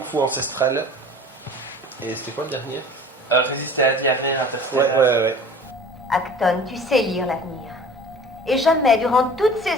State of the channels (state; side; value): normal; both; correlation 0.43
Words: Fu ancestral. Et c'était quoi le dernier? Résister à la diarrhée interstellaire. Ouais. Acton, tu sais lire l'avenir. Et jamais, durant toutes ces